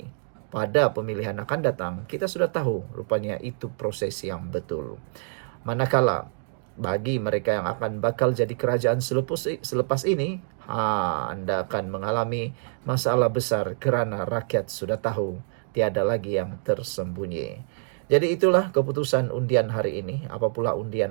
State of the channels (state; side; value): silent; left; 60 dB below the other